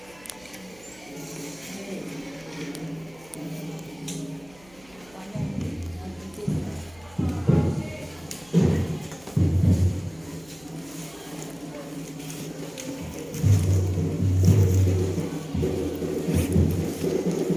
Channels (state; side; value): noise; right; hum, 27 dB below the sound